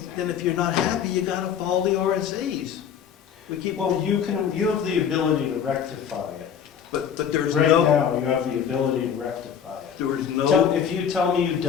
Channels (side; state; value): right; quieter; 8.1 dB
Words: then if you're not happy, you gotta follow the RSAs. We keep, Well, you have the ability to rectify it. but there is Right no, now, you have the ability to rectify it. there is no, If you tell me you